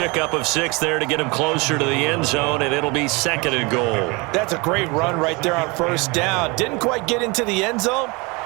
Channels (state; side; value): quieter; left; 27.2 dB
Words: of 6 there to get him closer to the end zone, and it'll be second and goal. That's a great run right there on first down. Didn't quite get into the end zone,